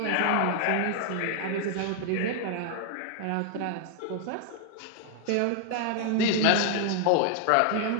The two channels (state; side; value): different; both; correlation 0.00